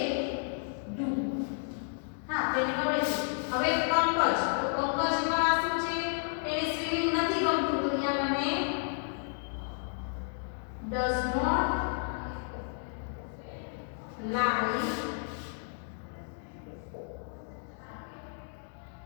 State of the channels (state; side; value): silent; right; 56 dB below the other